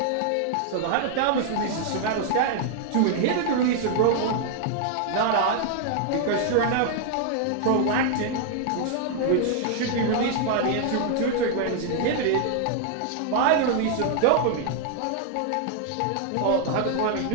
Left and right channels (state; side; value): different; both; correlation 0.00